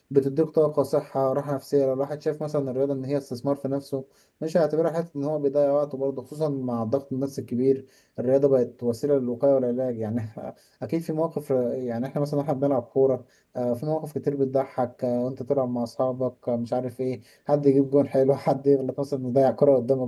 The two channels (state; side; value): identical; both; correlation 1.00